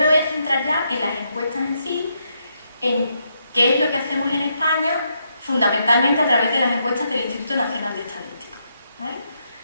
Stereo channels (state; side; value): inverted; both; correlation -0.79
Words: voy a centrar ya en las encuestas en sí, en qué es lo que hacemos en España, fundamentalmente a través de las encuestas del Instituto Nacional de Estadística, ¿vale?